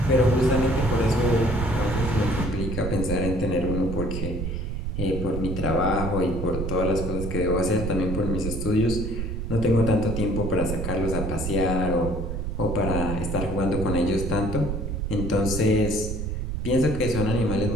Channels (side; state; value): right; noise; rumble, 3 dB below the sound